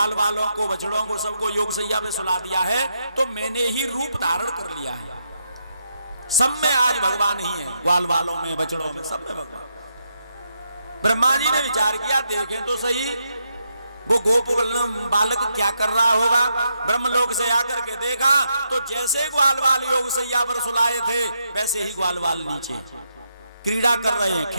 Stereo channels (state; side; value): inverted; both; correlation -0.81